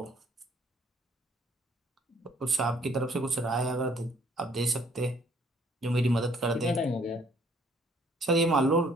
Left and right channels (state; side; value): normal; both; correlation 0.62